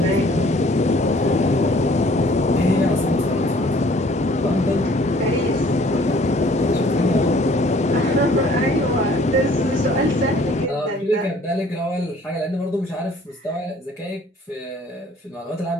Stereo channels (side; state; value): both; normal; correlation 0.56